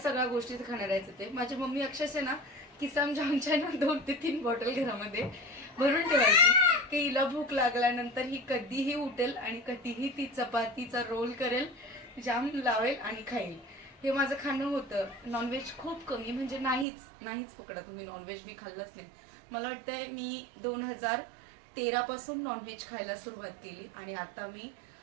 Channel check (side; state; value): left; drops out; at 16.9 s